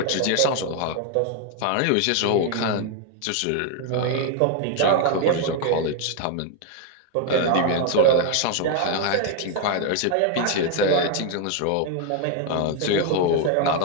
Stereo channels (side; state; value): both; different; correlation 0.01